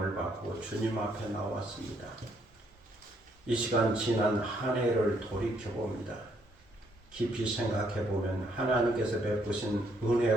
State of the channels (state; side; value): normal; both; correlation 0.70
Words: 받고 주님 앞에 나왔습니다. 이 시간 지난 한 해를 돌이켜봅니다. 깊이 생각해보면 하나님께서 베푸신